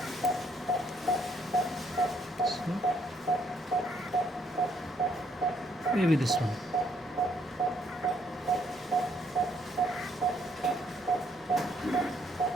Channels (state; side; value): normal; both; correlation 0.69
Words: Maybe this one.